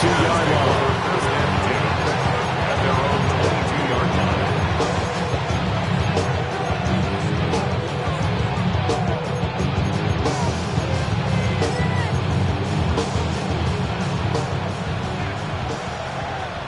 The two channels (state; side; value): identical; both; correlation 1.00